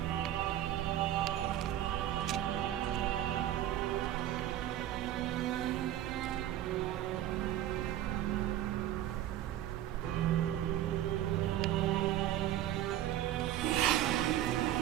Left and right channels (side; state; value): left; quieter; 12.4 dB